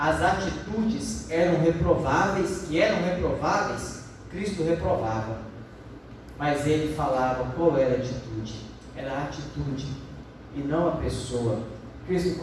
atitudes eram reprováveis, Cristo reprovava, mas ele falava qual era a atitude. Era a atitude e não a pessoa. Cristo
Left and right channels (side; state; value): both; identical; correlation 1.00